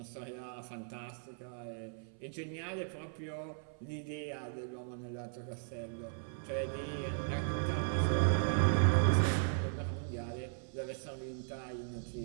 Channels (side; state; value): left; silent; 53 dB below the other